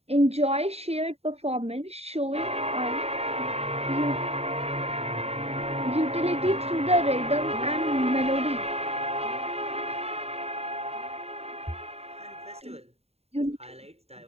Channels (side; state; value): left; late; 0.30 ms